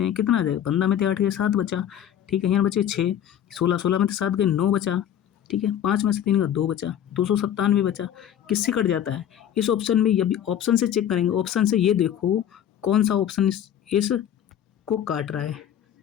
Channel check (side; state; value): right; quieter; 10.0 dB